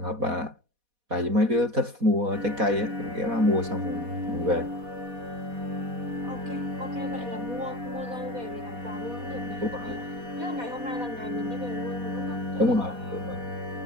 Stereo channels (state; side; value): late; left; 4.1 ms